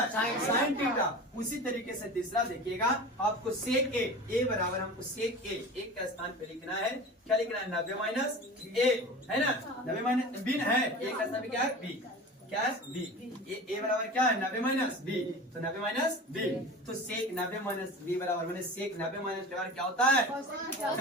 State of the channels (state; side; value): normal; both; correlation 0.34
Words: साइन थीटा। उसी तरीके से तीसरा देखिएगा आपको सेक ए बराबर हमको सेक ए एक का स्थान पे लिखना है। क्या लिखना है 90 माइनस ए है ना 90 माइनस बी है एक का स्थान पे क्या है बी। क्या है बी। ए बराबर क्या है 90 माइनस बी। तो 90 माइनस बी तो सेक 90 माइनस बी बराबर मैंने सेक 90 माइनस बराबर क्या होता है